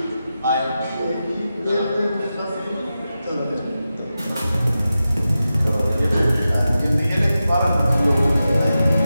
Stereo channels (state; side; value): inverted; both; correlation -0.92